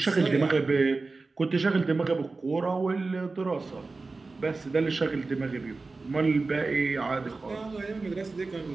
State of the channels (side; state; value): left; quieter; 3.7 dB